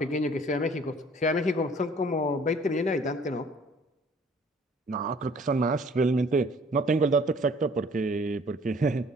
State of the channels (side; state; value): both; normal; correlation 0.55